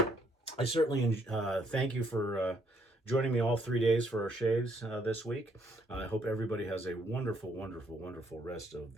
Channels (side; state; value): both; normal; correlation 0.69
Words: I certainly thank you for joining me all 3 days for our shaves this week. I hope everybody has a wonderful, wonderful, wonderful rest of